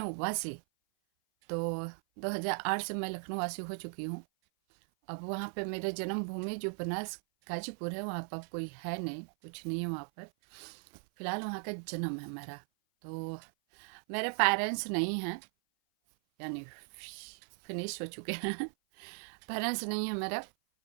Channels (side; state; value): left; silent; 53 dB below the other